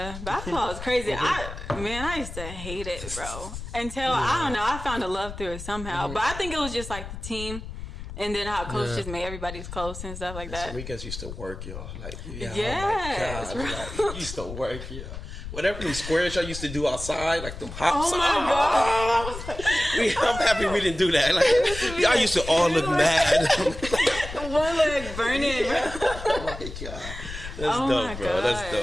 basketball is crazy. I used to hate it, bro. Until I don't know, I found a love through it somehow. But I think it was just like the team. And then how coach just made everybody's close and stuff like that. Enriquez used to work, y'all. Like, yes, oh my God. Like, he used to work, y'all. Whatever them squares y'all used to do outside, like them hops. Oh my God. I'm happy we didn't do that. Like, y'all used to all look mad. One leg burning. Oh my God. That's dope, bro. That's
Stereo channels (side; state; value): left; noise; rumble, 10 dB below the sound